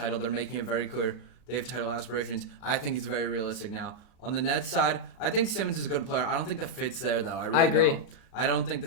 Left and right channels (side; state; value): right; late; 37 ms